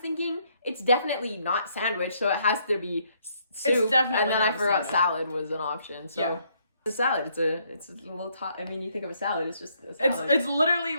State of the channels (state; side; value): inverted; both; correlation -0.70